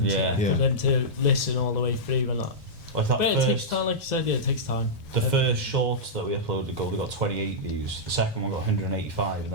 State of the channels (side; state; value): both; normal; correlation -0.11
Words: for them to listen all the way through and that. Like that but it takes time, like you said, yeah, it takes time. The first shorts that we uploaded got 28 views, the second one got 185, and